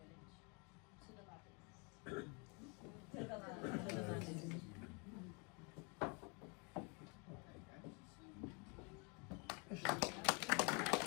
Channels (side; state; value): right; quieter; 33.0 dB